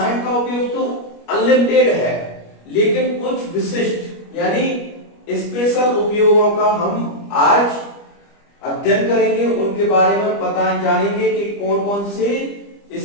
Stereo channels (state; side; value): late; right; 25 ms